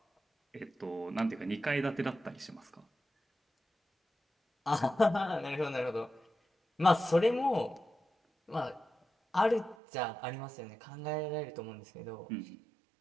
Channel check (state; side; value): drops out; left; at 9.8 s